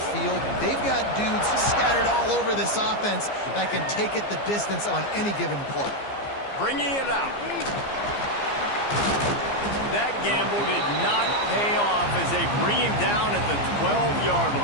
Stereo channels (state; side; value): late; right; 15 ms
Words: They've got dudes scattered all over this offense that can take it the distance on any given play. Bringing it out. That gamble did not pay off as they bring him down at the 12-yard